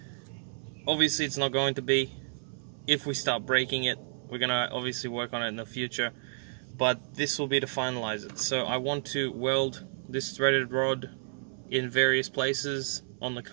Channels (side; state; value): left; silent; 57 dB below the other